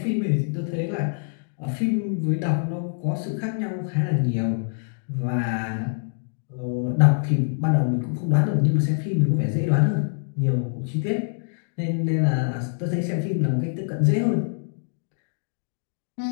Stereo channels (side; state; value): right; silent; digital silence